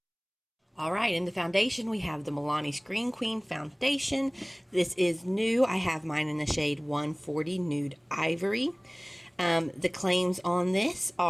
Alright, in the foundation, we have the Milani Scream Queen Foundation. This is new. I have mine in the shade 140 Nude Ivory. The claims on this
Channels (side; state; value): both; identical; correlation 1.00